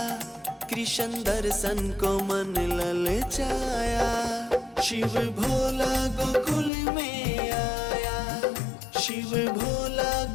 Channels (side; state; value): right; drops out; at 6.7 s